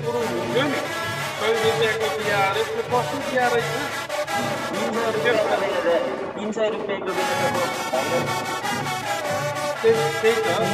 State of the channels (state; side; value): identical; both; correlation 1.00